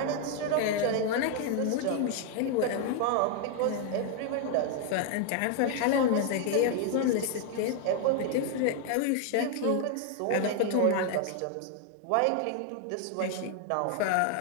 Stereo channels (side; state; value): both; different; correlation 0.00